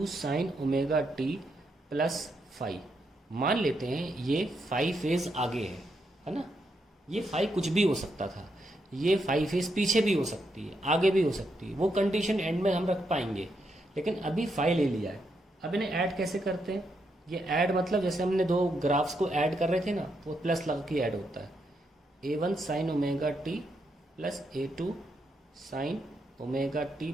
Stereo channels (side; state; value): both; normal; correlation 0.80